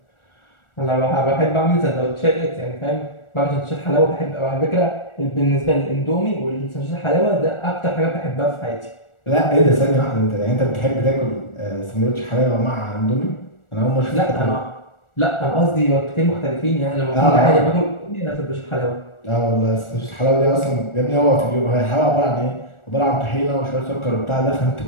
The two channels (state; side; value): late; right; 1.4 ms